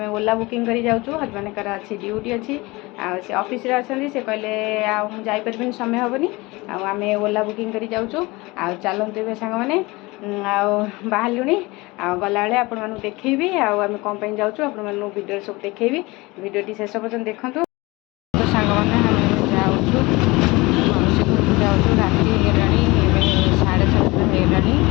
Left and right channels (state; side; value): quieter; right; 22.9 dB